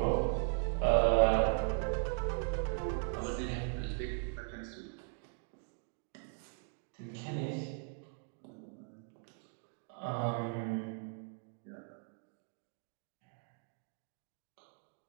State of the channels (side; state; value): left; quieter; 38.8 dB